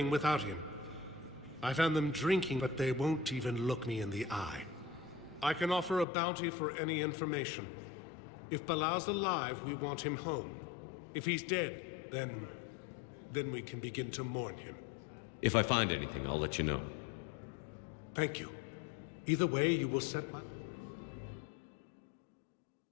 without him. I found them drinking, but they won't even look me in the eye. I can offer a bounty for any information. If Bilal's alive, we want him home. If he's dead, then we can begin to mourn him. If I find anything, I'll let you know. Thank you. Either way, you will set my...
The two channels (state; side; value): drops out; right; at 6.1 s